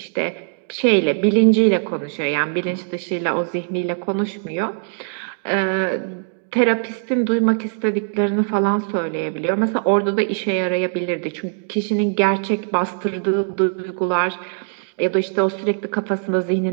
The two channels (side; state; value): left; silent; 59 dB below the other